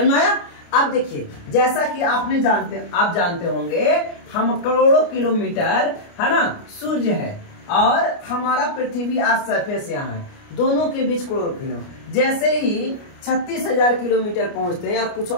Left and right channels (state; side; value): late; right; 29 ms